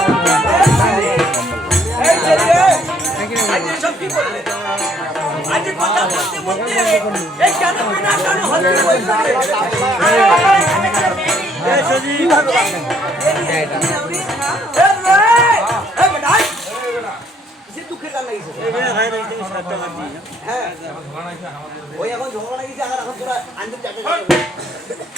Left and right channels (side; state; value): both; normal; correlation 0.65